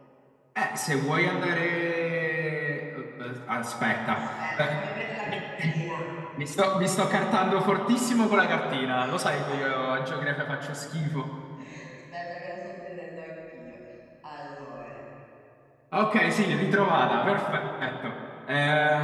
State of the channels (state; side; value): identical; both; correlation 1.00